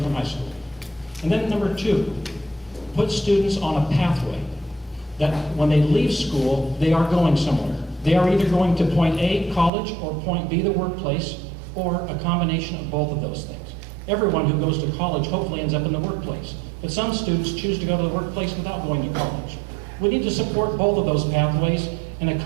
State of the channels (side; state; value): left; drops out; at 9.7 s